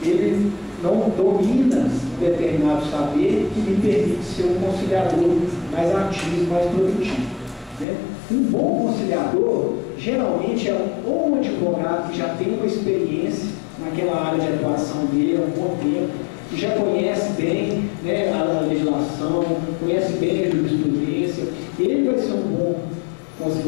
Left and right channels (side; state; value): right; drops out; at 7.9 s